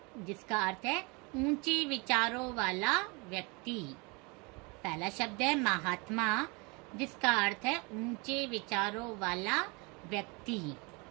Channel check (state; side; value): quieter; left; 29.1 dB